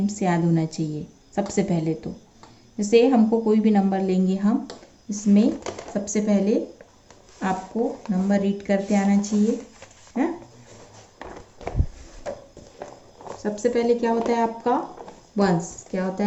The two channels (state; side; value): identical; both; correlation 1.00